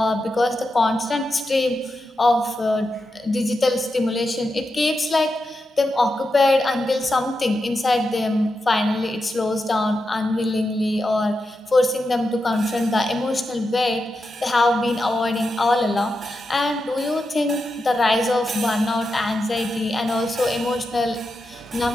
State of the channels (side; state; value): both; normal; correlation 0.88